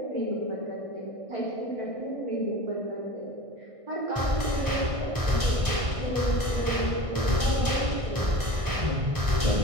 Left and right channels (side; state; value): left; late; 1.6 ms